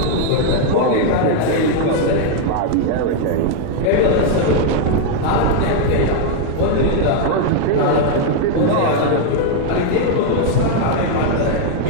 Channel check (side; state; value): both; different; correlation 0.00